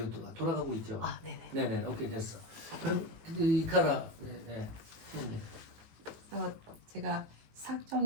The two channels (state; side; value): late; left; 19 ms